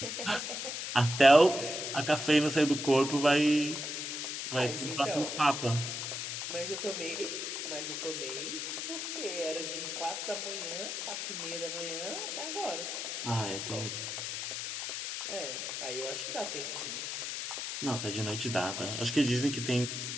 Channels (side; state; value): left; noise; hiss, 4 dB below the sound